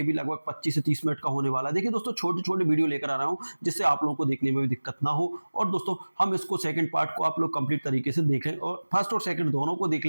भी लगभग 25 से 30 मिनट का होने वाला है। देखिए दोस्तों, छोटे छोटे वीडियो लेकर आ रहा हूँ जिससे आप लोगों को देखने में भी दिक्कत ना हो। और दोस्तों हम इसको सेकंड पार्ट को आप लोग कंप्लीट तरीके से देख लें और फर्स्ट और सेकंड दोनों को देख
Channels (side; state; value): both; inverted; correlation -1.00